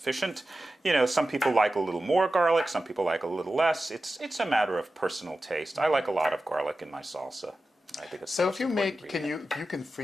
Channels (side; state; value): both; normal; correlation 0.93